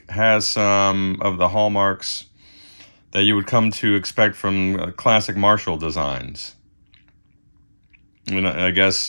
has some of the hallmarks that you would come to expect from classic Marshall designs. And I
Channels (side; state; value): both; inverted; correlation -1.00